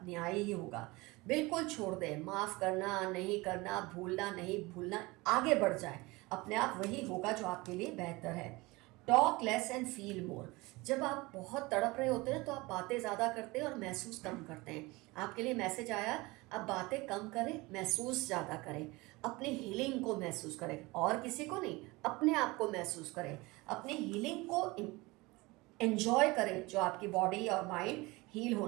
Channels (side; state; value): left; quieter; 22.9 dB